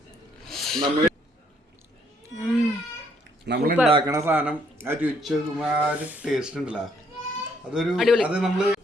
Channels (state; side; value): normal; both; correlation 0.68